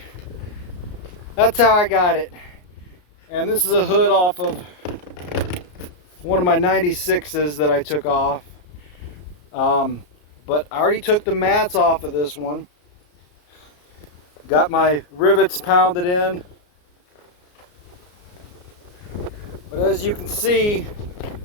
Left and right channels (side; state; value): right; late; 34 ms